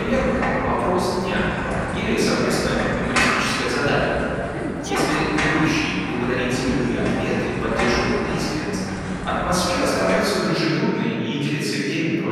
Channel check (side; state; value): both; identical; correlation 1.00